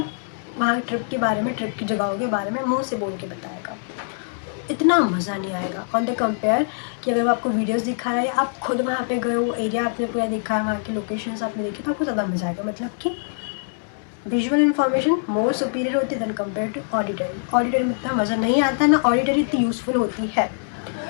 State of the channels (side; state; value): right; silent; digital silence